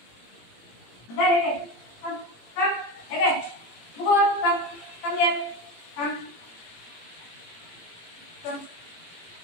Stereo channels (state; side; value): late; right; 17 ms